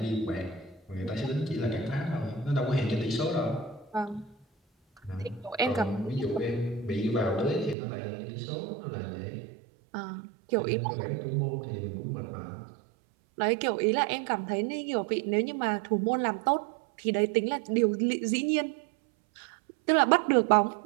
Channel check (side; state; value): left; drops out; at 7.8 s